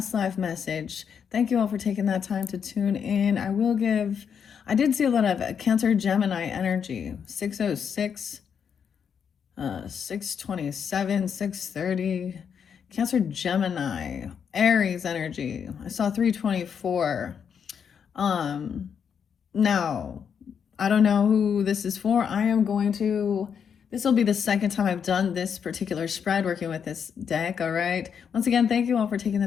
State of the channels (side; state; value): right; quieter; 7.3 dB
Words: life message. Thank you all for taking that time to tune in. I did see a lot of Cancer Gemini energy 606, 627, 630. Cancer Gemini, Aries energy. I saw 324. Um, Now, I don't know who this is for. This will be the second time I've done this particular spread working with this deck, all right? Once again, thank you all for taking the